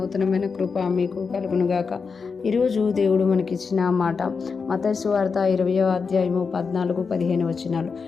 కృప మీకు కలుగునుగాక. ఈరోజు దేవుడు మనకిచ్చిన మాట మత్తయి సువార్త 20వ అధ్యాయము 14-15 వచనాలు.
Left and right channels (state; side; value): quieter; right; 5.2 dB